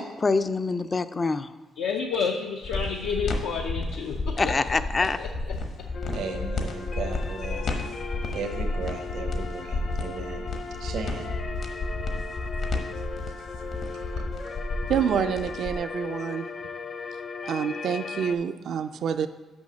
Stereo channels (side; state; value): both; normal; correlation 0.73